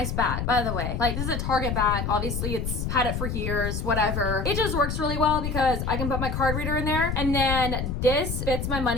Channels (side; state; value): left; noise; rumble, 2 dB below the sound